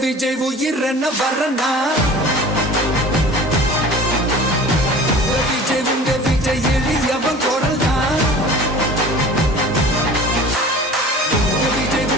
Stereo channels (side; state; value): both; normal; correlation 0.42